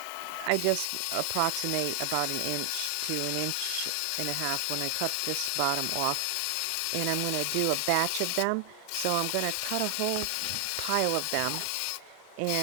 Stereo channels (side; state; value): both; different; correlation 0.00